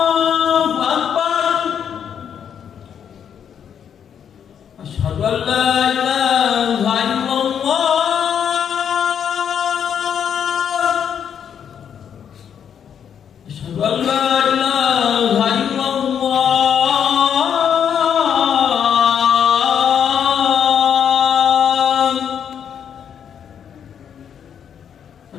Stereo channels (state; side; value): quieter; right; 8.3 dB